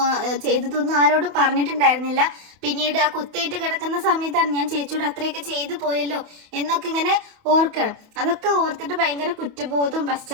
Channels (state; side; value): late; left; 28 ms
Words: ചെയ്തതൊന്നും ആരോടും പറഞ്ഞിട്ടുണ്ടായിരുന്നില്ല. പിന്നീട് ആ കുത്തേറ്റ് കിടക്കുന്ന സമയത്താണ് ഞാൻ ചേച്ചിയോട് അത്രയൊക്കെ ചെയ്തു പോയല്ലോ എന്നൊക്കെ ഇങ്ങനെ ഓർക്കണം. അതൊക്കെ ഓർത്തിട്ട് ഭയങ്കര കുറ്റബോധവും